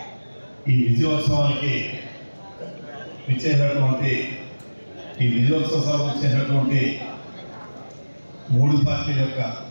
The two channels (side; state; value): both; inverted; correlation -1.00